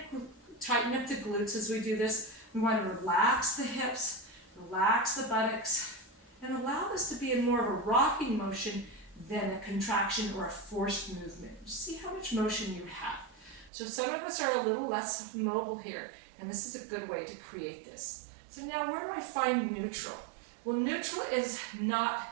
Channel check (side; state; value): left; drops out; at 13.7 s